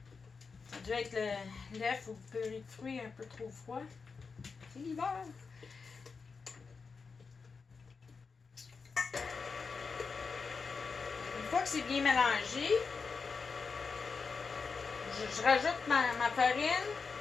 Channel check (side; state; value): right; quieter; 5.0 dB